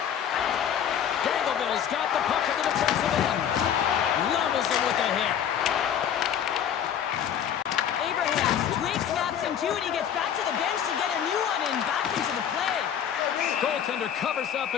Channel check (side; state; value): right; quieter; 9.1 dB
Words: Dangleville's got the puck at the defensive end. Levels him with a hit. Abrahams, Drake snaps him too, and he gets back to the bench to get a new one and back into the play. Goaltender covers up